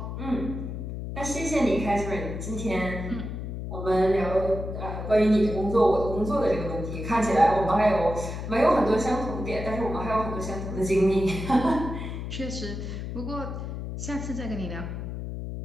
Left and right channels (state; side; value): noise; left; hum, 6 dB below the sound